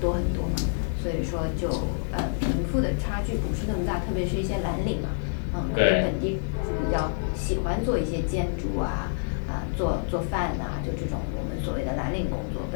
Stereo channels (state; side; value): silent; right; 60 dB below the other